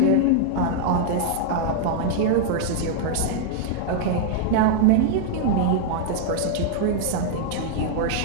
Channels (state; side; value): different; both; correlation -0.01